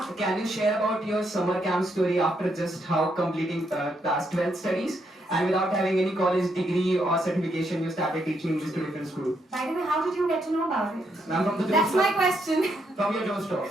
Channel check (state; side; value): normal; both; correlation 0.77